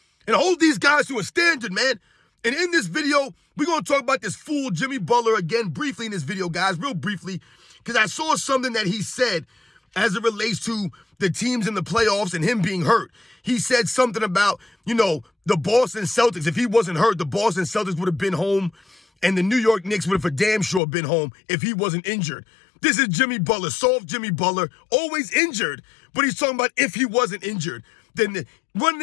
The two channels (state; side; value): drops out; right; at 20.8 s